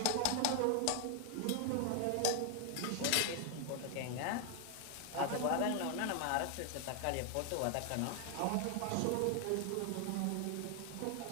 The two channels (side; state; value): both; different; correlation 0.00